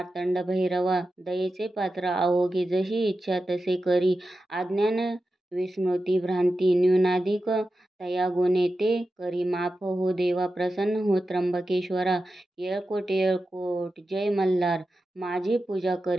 भैरवा. दयेचे पात्र अवघे जशी इच्छा तसे करी. अज्ञान विस्मृती भ्रांती न्यूनाधिक तया गुणे ते करी माफ हो देवा प्रसन्न हो त्र्यंबकेश्वरा. येळकोट येळकोट जय मल्हार. माझी पूजा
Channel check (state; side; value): normal; both; correlation 0.92